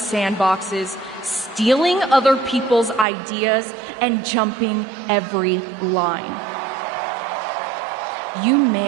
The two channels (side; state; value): left; drops out; at 3.1 s